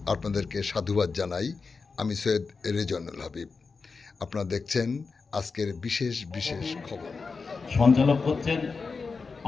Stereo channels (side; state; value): right; quieter; 4.6 dB